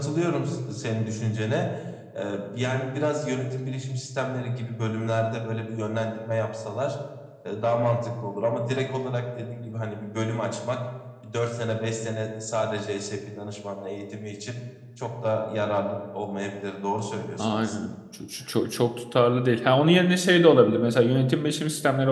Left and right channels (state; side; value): identical; both; correlation 1.00